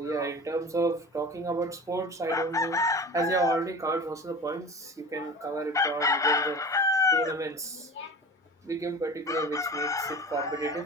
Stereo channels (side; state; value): both; normal; correlation 0.36